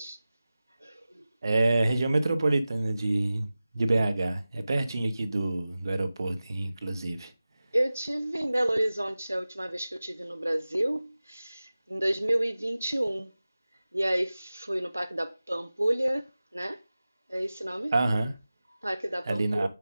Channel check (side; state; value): both; inverted; correlation -0.96